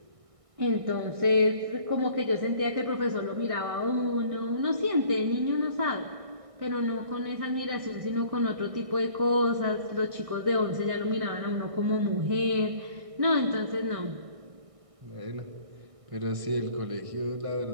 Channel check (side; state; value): left; late; 1.6 ms